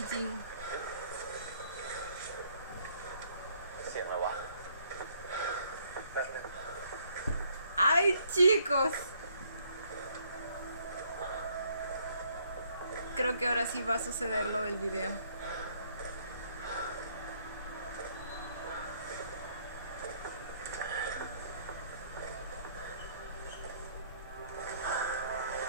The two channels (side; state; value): both; inverted; correlation -0.66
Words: ¡Ay, chicos! Creo que ahora sí va a suceder lo del video.